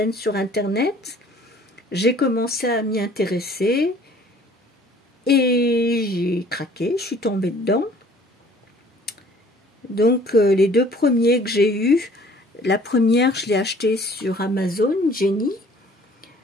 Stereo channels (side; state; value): both; normal; correlation 0.54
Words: sur Internet. J'ai commencé à m'y intéresser et j'ai craqué, je suis tombée dedans. Donc les deux premiers que j'ai eus, la première je l'ai achetée sur Amazon, Jenny.